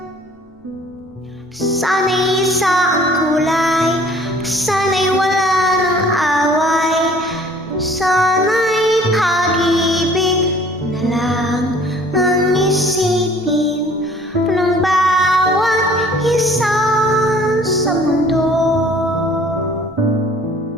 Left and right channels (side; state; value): both; normal; correlation 0.53